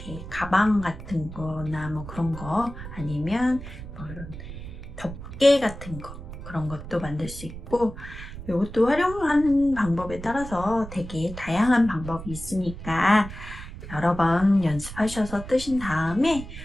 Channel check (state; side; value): noise; right; rumble, 11 dB below the sound